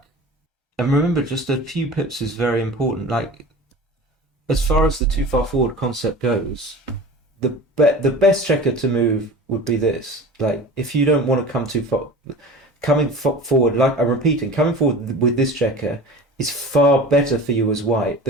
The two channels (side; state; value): both; normal; correlation 0.37